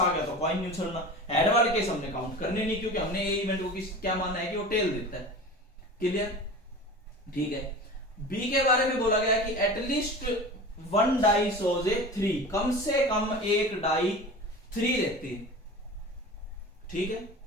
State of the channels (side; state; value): both; normal; correlation 0.34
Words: गया तो कॉइन नहीं उछलना। हेड वाले केस हमने काउंट करने नहीं, क्योंकि हमने ए इवेंट को क्या माना है कि वो टेल देता है। क्लियर? ठीक है। बी के बारे में बोला गया कि एटलीस्ट 1 डाई शोज ए 3, कम से कम एक डाई 3 देती है। ठीक है,